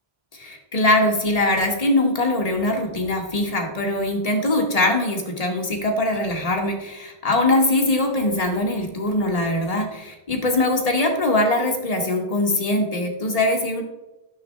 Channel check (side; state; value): right; late; 1.8 ms